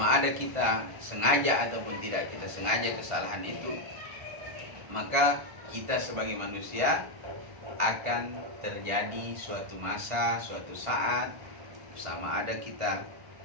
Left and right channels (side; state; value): left; late; 1.5 ms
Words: ada kita sengaja ataupun tidak kita sengaja kesalahan itu, maka kita sebagai manusia akan terjadi suatu masa, suatu saat, sama ada kita